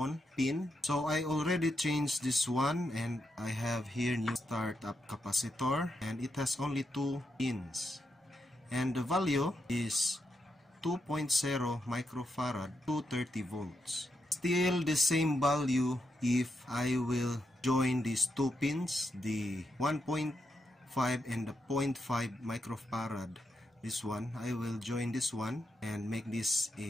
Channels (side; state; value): both; normal; correlation 0.83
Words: pin. So I already changed this one and I have here new startup capacitor and it has only 2 pins. And the value is 2.0 microfarad to 30 volts. Still the same value if I will join these 2 pins, the 1.5 and the 0.5 microfarad. This one, I will join this one and make this